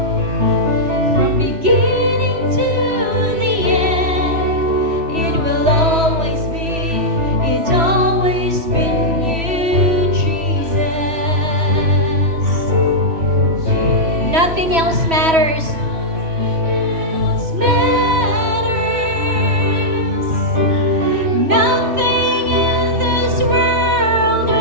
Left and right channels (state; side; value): late; left; 3.1 ms